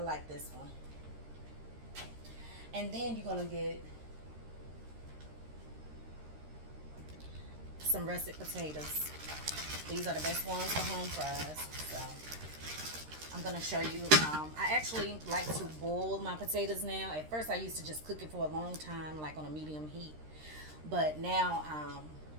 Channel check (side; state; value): left; late; 13 ms